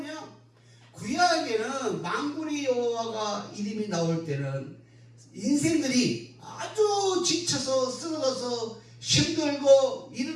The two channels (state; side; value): identical; both; correlation 1.00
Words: 구약에는 만군의 여호와가 이름이 나올 때는 인생들이 아주 지쳐서 쓰러져서 힘들고